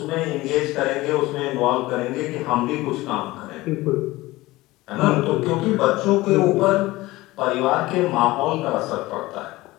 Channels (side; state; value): right; quieter; 19.1 dB